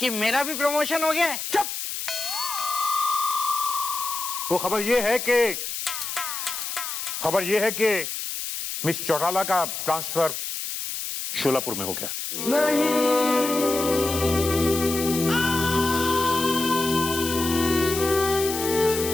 मेरा भी प्रमोशन हो गया है? चुप। वो खबर ये है कि मिस चौटाला का ट्रांसफर शोलापुर में हो गया।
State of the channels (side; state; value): left; noise; hiss, 5 dB below the sound